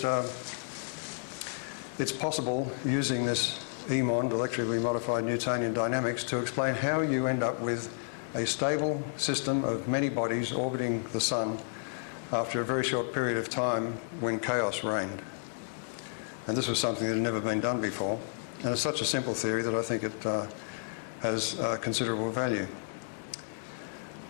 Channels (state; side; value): silent; right; digital silence